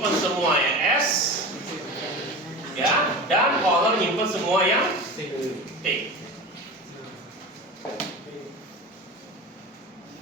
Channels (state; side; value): normal; both; correlation 0.30